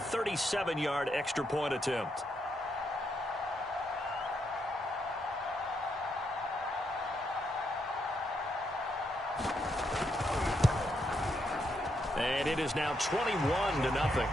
extra point attempt. And it is now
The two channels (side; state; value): both; normal; correlation 0.79